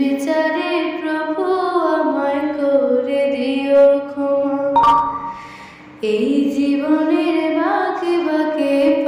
প্রভু আমায় করে দিও ক্ষমা। এই জীবনের বাঁকে বাঁকে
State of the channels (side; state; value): both; identical; correlation 1.00